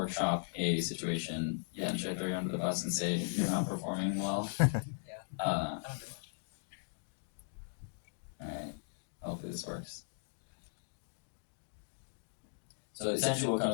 a situation. Yeah, should I throw you under the bus and say you're not performing well? Alright, hopefully this works. So essentially what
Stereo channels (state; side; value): silent; right; digital silence